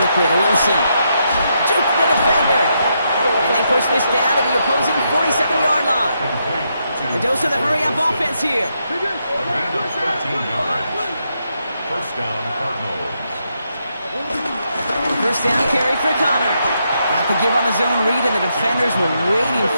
to Wilson. Juke the defender. And they push this down to the opposing 47-yard line. The dose of the hurry-up offense here. A gain of 13 yards. 1st down, Cardinals. 1st down carry for Connor. Got the give on the zone read, and the defenders were waiting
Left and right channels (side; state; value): both; inverted; correlation -0.80